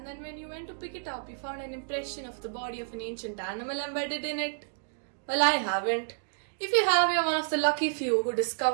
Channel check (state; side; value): silent; left; digital silence